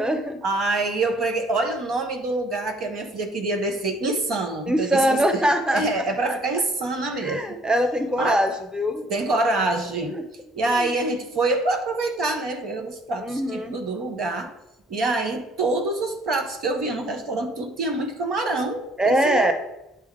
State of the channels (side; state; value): both; normal; correlation 0.61